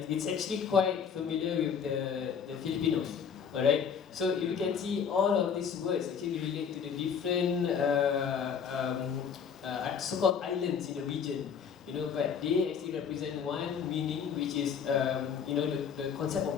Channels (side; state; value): right; quieter; 7.0 dB